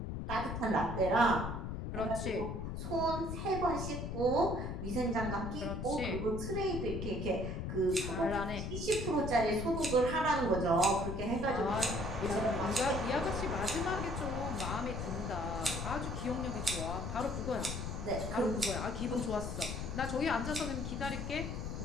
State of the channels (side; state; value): left; noise; rumble, 4 dB below the sound